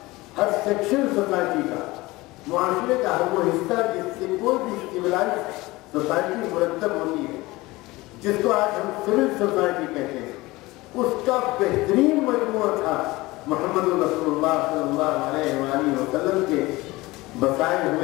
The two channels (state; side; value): quieter; right; 20.6 dB